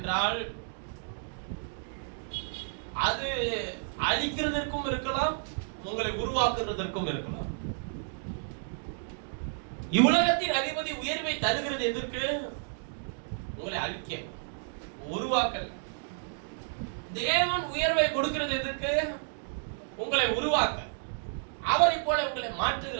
அது அழிக்கிறதற்கும் இருக்கலாம், உங்களை உருவாக்குறதற்கும் இருக்கலாம். இவ்வுலகத்தின் அதிபதி உயர்வை தருகிறது எதற்கு? உங்களை அழிக்க, உருவாக்கல். தேவன் உயர்வை கொடுக்கிறது எதற்கு? உங்களை உருவாக்க, அவரை போல உங்களை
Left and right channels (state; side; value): silent; left; digital silence